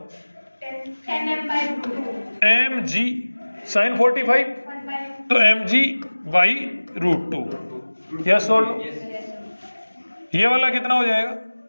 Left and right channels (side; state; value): both; inverted; correlation -1.00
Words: mg sin 45, तो mg बाई √2। यस और नो? ये वाला कितना हो जाएगा,